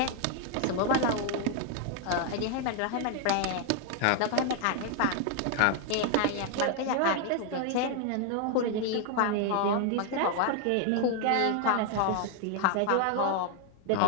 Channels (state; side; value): different; both; correlation 0.00